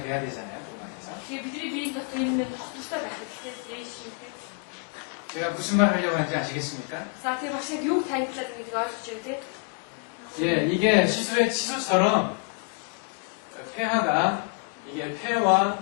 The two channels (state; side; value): quieter; right; 34.9 dB